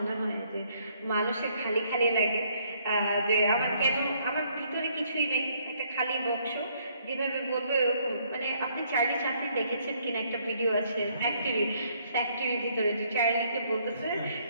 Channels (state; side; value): inverted; both; correlation -0.67